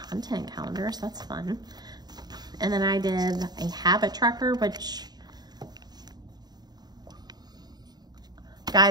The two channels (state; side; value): late; left; 0.20 ms